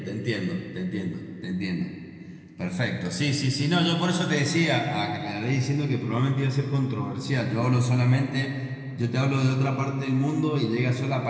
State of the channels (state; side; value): identical; both; correlation 1.00